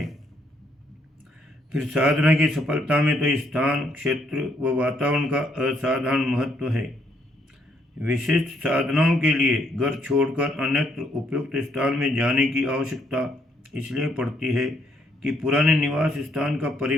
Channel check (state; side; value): normal; both; correlation 0.71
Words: फिर साधना की सफलता में तो स्थान, क्षेत्र व वातावरण का असाधारण महत्व है। विशिष्ट साधनाओं के लिए घर छोड़कर अन्यत्र उपयुक्त स्थान में जाने की आवश्यकता इसलिए पड़ती है कि पुराने निवास स्थान का